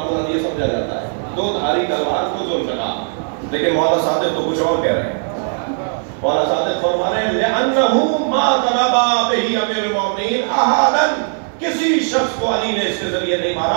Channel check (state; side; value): silent; left; 62 dB below the other